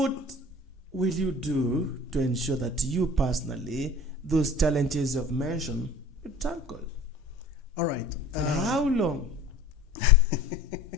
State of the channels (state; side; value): normal; both; correlation 0.43